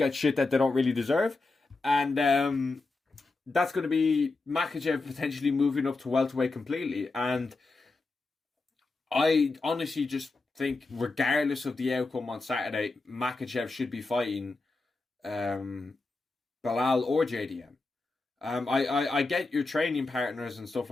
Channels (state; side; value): quieter; right; 3.5 dB